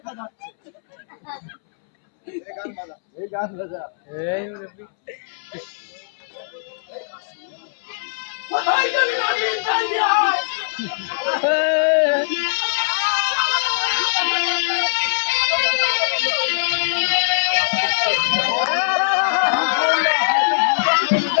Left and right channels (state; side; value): silent; right; 65 dB below the other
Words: যাচ্ছে। এই গান বাজা এই মুরব্বি কোথায় গেলি নাগিন তাড়িয়ে আয়।